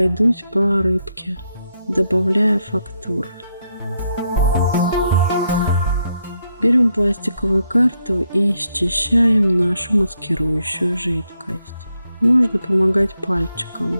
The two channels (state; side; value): inverted; both; correlation -0.80